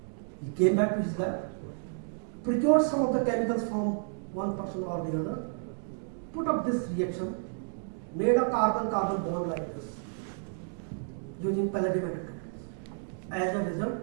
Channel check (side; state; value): left; silent; digital silence